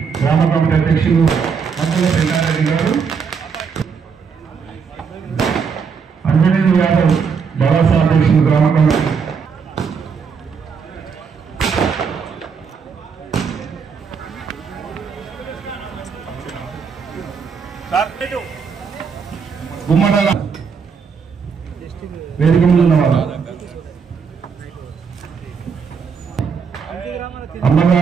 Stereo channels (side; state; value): left; quieter; 6.0 dB